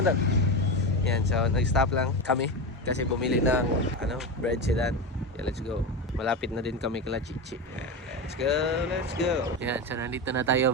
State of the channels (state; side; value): normal; both; correlation 0.19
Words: Dan. Yan, so nag-stop lang kami kasi bumili ng bread si Dan. Yeah, let's go. Malapit na din kami kila Chichi. Yan, let's go. Yan, so nandito na tayo